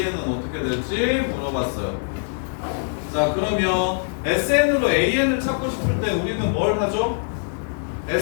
어떻게 될지 물어봤어요. 자, 그러면 sn으로 an을 찾고 싶을 때 우리는 뭘 하죠?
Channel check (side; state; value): right; silent; digital silence